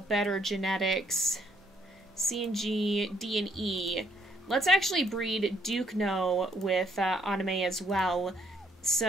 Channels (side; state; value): both; normal; correlation 0.70